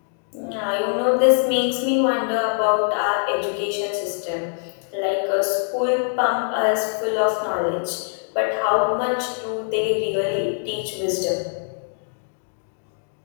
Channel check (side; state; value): right; silent; 63 dB below the other